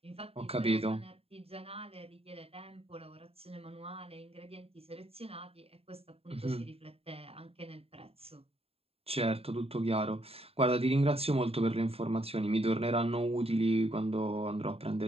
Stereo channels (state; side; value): late; left; 0.28 ms